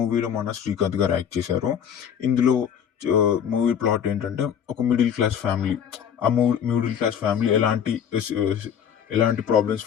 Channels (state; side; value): quieter; right; 8.4 dB